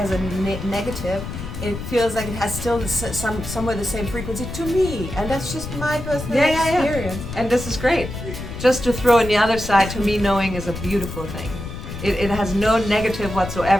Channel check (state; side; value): noise; left; rumble, 8 dB below the sound